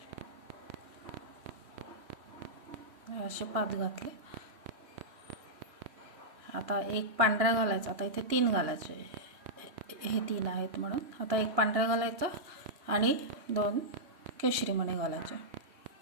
असे 5 घातले. आता एक पांढरा घालायचा. आता इथे 3 घालायचे, हे 3 आहेत म्हणून. आता एक पांढरा घालायचा आणि 2 केशरी मणी घालायचे.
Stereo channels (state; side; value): late; left; 3.1 ms